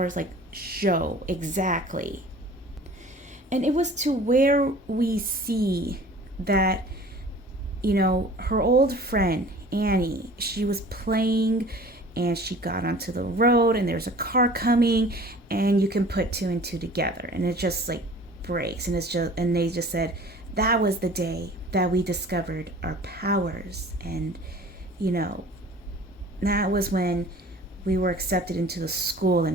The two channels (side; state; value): both; normal; correlation 0.46